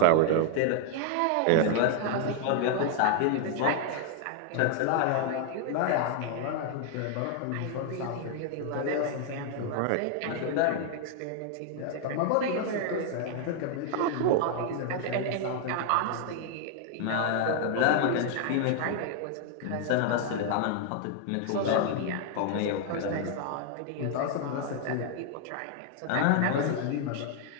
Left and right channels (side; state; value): both; different; correlation 0.00